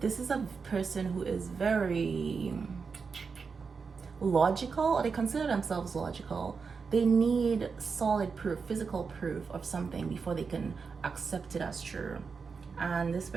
is a person who is very logical, or they consider themselves logical. They need solid proof, physical proof of something before they can accept it as true. And this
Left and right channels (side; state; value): left; quieter; 5.3 dB